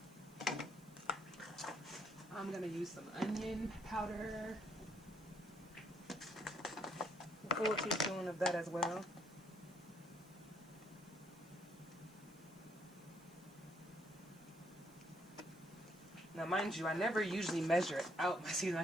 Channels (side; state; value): right; noise; hiss, 27 dB below the sound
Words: I'm gonna use some onion powder, a full teaspoon of that as well. Now, mind you, I never usually measure out my seasoning. I